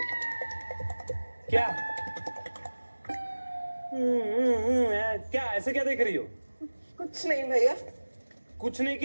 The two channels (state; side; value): inverted; both; correlation -1.00